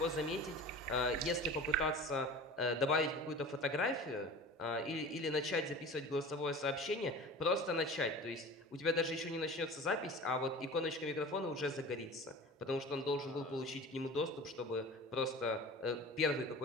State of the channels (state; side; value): normal; both; correlation 0.37